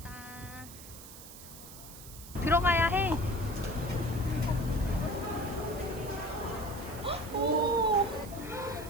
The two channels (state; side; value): noise; right; hiss, 15 dB below the sound